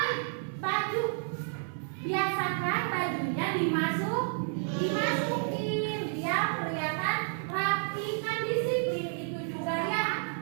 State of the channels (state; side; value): silent; left; 57 dB below the other